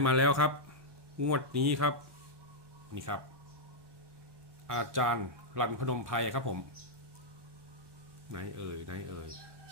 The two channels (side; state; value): left; late; 1.1 ms